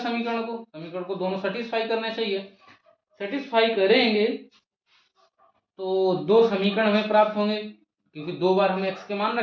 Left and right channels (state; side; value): identical; both; correlation 1.00